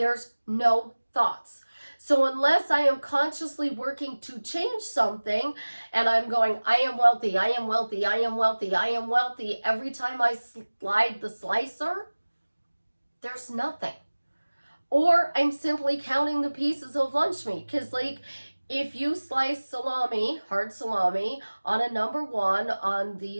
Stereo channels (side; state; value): both; inverted; correlation -1.00